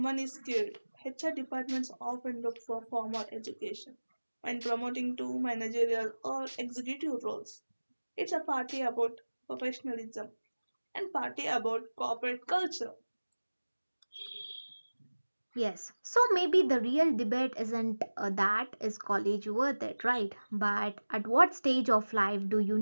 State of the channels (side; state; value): both; inverted; correlation -1.00